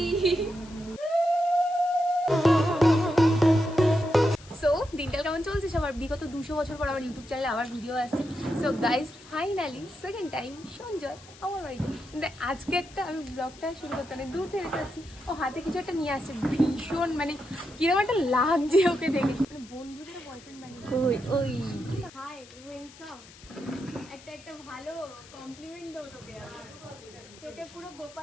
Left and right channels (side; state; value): left; noise; hiss, 21 dB below the sound